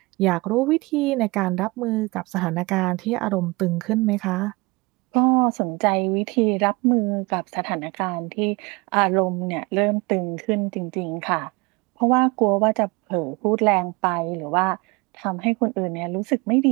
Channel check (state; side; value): quieter; left; 25.0 dB